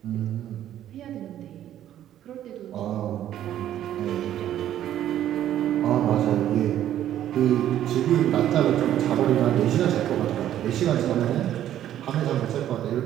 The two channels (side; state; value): left; quieter; 11.7 dB